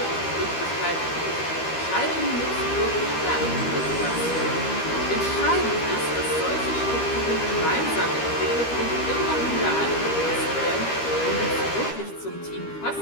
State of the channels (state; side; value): late; right; 13 ms